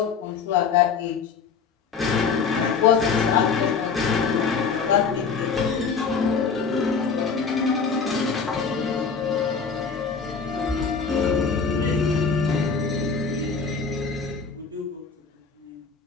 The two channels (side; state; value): right; quieter; 5.5 dB